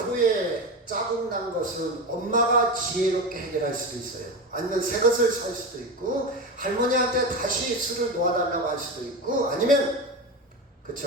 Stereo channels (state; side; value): normal; both; correlation 0.21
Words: 자국 난 것은 엄마가 지혜롭게 해결할 수도 있어요. 아니면 새 것을 살 수도 있고, 할머니한테 다시 술을 놓아달라고 할 수도 있고, 아니면